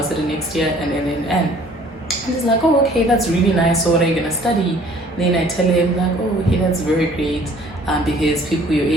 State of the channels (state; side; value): normal; both; correlation 0.55